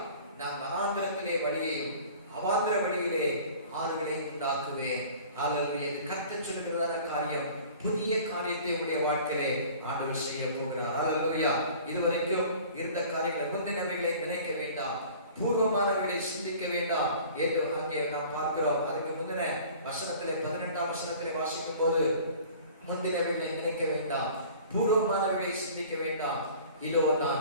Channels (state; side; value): inverted; both; correlation -0.46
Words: நான் வனாந்திரத்திலே வழியையும் அவாந்திர வழியிலே ஆறுகளை உண்டாக்குவேன். அல்லேலூயா. கர்த்தர் சொல்கிறதான காரியம், புதிய காரியத்தை உடைய வாழ்க்கையிலே ஆண்டவர் செய்ய போகிறார். அல்லேலூயா. இதுவரைக்கும் இருந்த காரியங்களை, முந்தினவைகளை நினைக்க வேண்டாம், பூர்வமானவைகளை சிந்திக்க வேண்டாம் என்று அங்கே நாம் பார்க்கிறோம். அதுக்கு முந்தின வசனத்திலே 12ஆம் வசனத்திலே வாசிக்கும் போது, முந்தினவைகளை நினைக்க வேண்டாம், பூர்வமானவைகளை சிந்திக்க வேண்டாம், இதோ